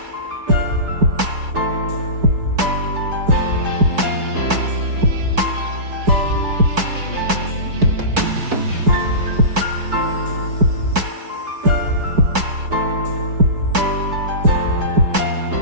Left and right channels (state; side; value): late; left; 4.5 ms